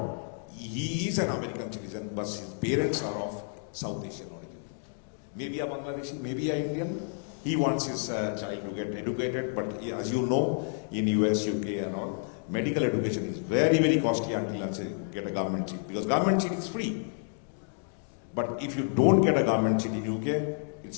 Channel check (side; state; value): right; silent; 58 dB below the other